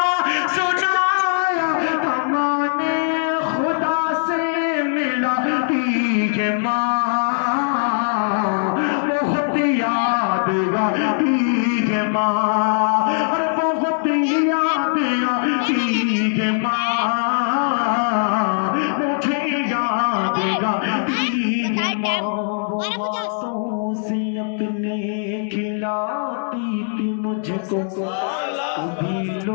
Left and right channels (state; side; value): silent; right; digital silence